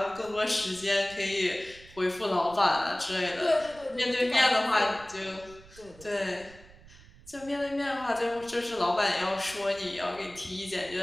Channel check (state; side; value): noise; right; rumble, 22 dB below the sound